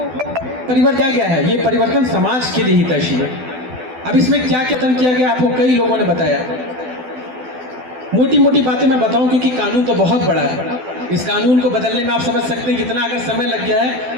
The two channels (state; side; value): late; left; 12 ms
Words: परिवर्तन गया है, ये परिवर्तन समाज के लिए हितैषी है। अब इसमें क्या क्या किया गया, आपको कई लोगों ने बताया। मोटी मोटी बातें मैं बताऊं, क्योंकि कानून तो बहुत बड़ा है। इस कानून को बदलने में आप समझ सकते हैं कितना अगर समय लग गया है,